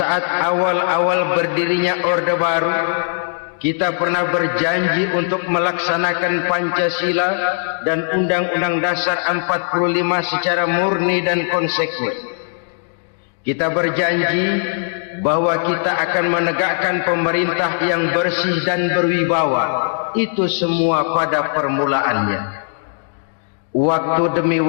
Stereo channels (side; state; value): right; silent; digital silence